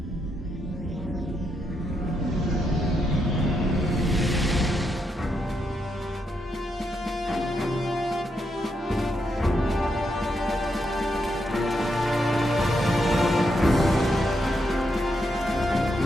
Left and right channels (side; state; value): both; normal; correlation 0.81